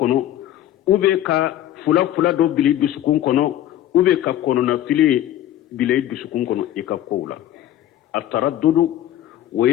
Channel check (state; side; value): quieter; right; 12.4 dB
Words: ube ka fula do bili dusukun kono ube ka kono na fili bili dusukun kono ikakola التردد